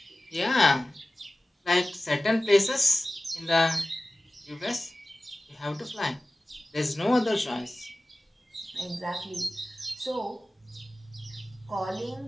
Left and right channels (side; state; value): both; normal; correlation 0.96